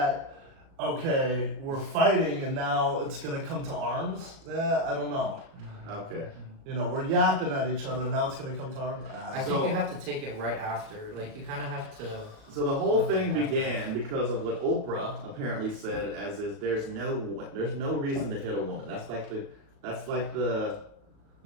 okay, we're fighting and now it's gonna come to arms, I don't know. Okay. You know, we're yapping at each other, now it's gonna come to arms. I So- think you have to take it right after. Like you kind of have to. So the whole thing began because of what Oprah apparently said, as is there's no reason to hit a woman. That's like the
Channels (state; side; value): late; left; 37 ms